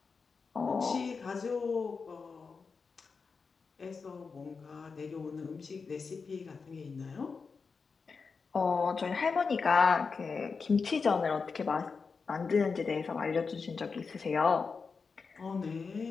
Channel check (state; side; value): quieter; right; 5.0 dB